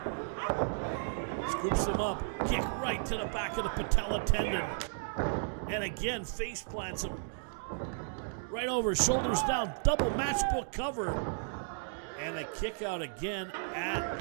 Scoops him up, kick right to the back of the patella tendon. And again, face plants him. Right over, shoulders down, double matchbook cover. And a kick out again at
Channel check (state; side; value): silent; left; digital silence